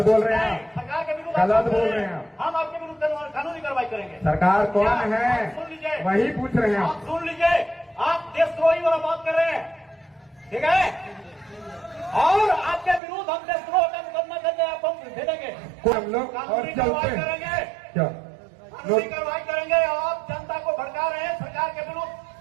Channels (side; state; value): left; drops out; at 13.0 s